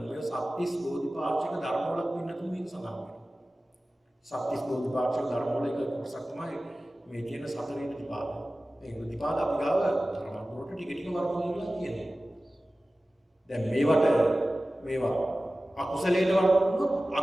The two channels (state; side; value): normal; both; correlation 0.96